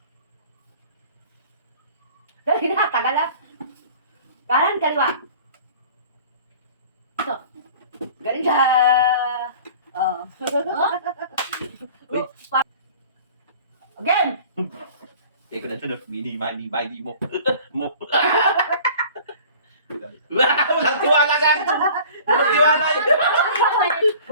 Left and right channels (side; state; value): both; inverted; correlation -0.45